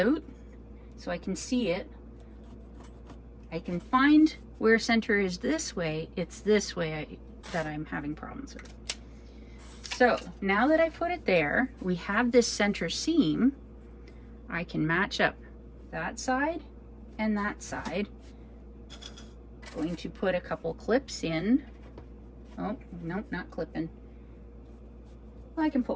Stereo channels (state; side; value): identical; both; correlation 1.00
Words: so I can see it. I can find where center is this way. It's this way that I'm having problems with. So now that I put it there, we have this center seam. I can match up that side and that side. Going to put a couple clips in. Oh, no, not clipping. Well, I can